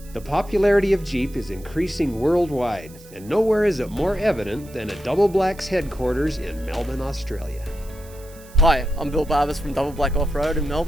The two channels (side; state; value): right; noise; hiss, 22 dB below the sound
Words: The popularity of Jeep is increasing worldwide, and nowhere is it more evident than at Double Black's headquarters in Melbourne, Australia. Hi, I'm Bill Barbers from Double Black Off-Road in